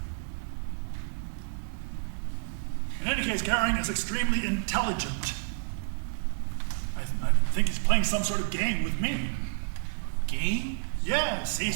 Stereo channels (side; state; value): left; silent; 55 dB below the other